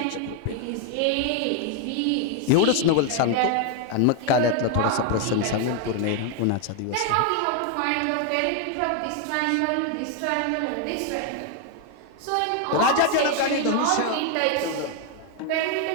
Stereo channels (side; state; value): both; different; correlation 0.01